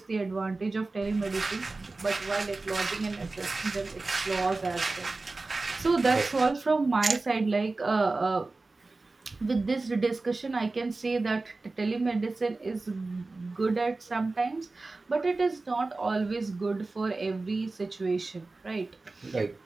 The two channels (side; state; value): left; quieter; 3.4 dB